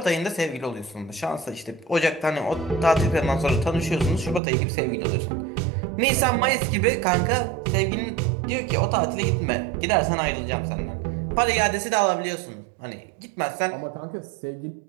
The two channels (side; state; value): left; drops out; at 4.4 s